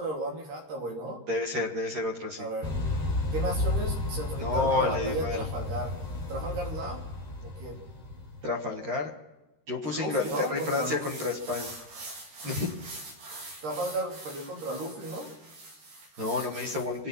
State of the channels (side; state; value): left; late; 13 ms